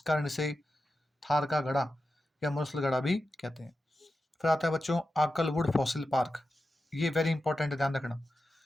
कारण इसे थार का गड़ा या मुरसल गड़ा भी कहते हैं। फिर आता है बच्चों आकलवुड फॉसिल पार्क। ये वेरी इंपॉर्टेंट है, ध्यान रखना।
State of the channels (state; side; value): normal; both; correlation 0.91